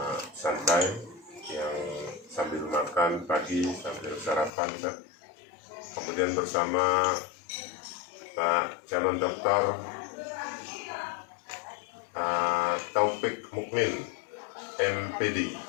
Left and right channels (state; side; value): drops out; right; at 4.5 s